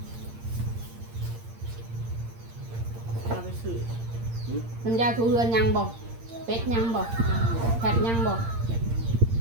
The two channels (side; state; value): left; late; 8.7 ms